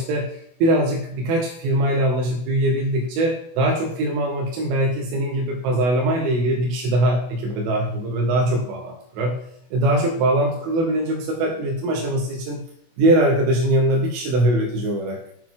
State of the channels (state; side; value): late; left; 24 ms